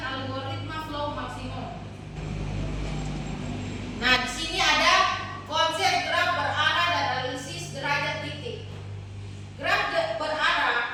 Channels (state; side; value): identical; both; correlation 1.00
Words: algoritma flow maksimum. Nah, di sini ada konsep graf berarah dan analisis derajat titik. Graf